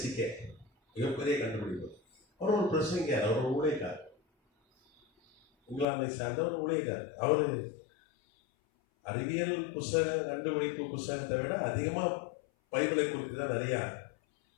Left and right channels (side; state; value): right; drops out; at 5.9 s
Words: மிகப்பெரிய கண்டுபிடிப்பு. அவர் ஒரு பிரசங்கியார், அவர் ஒரு ஊழியக்கார், இங்கிலாந்தை சார்ந்த ஒரு ஊழியக்கார். அவர் அறிவியல் புஸ்தக கண்டுபிடிப்பு புஸ்தகத்தை விட அதிகமாக பைபிளை குறித்து தான் நிறைய